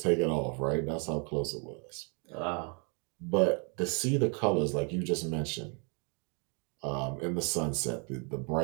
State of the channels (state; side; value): quieter; left; 36.8 dB